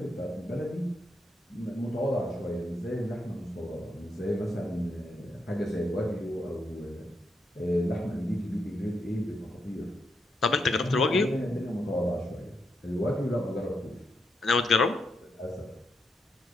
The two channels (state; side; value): normal; both; correlation 0.82